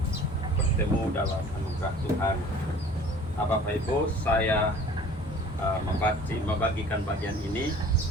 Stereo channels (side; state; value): both; normal; correlation 0.48